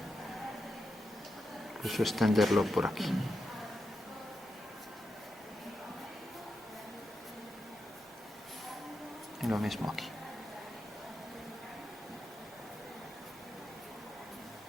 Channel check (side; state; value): both; normal; correlation 0.87